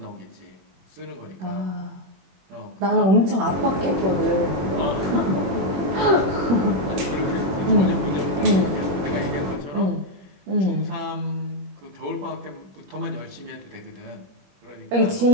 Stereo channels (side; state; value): left; late; 21 ms